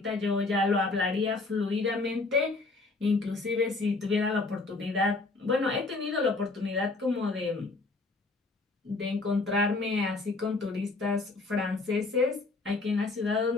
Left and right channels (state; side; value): quieter; right; 3.5 dB